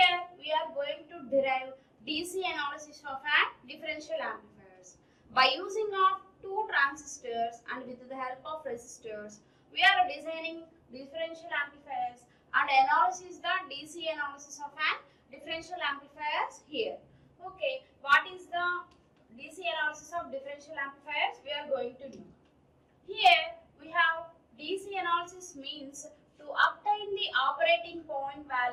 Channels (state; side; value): identical; both; correlation 1.00